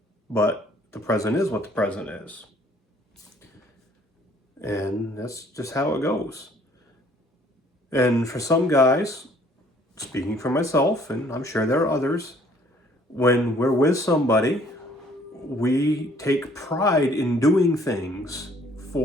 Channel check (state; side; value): normal; both; correlation 0.60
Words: But the present is what the present is. And that's just how it goes. And for some guys, speaking for myself, and I'm sure there are others, when we're with somebody, we take pride in doing things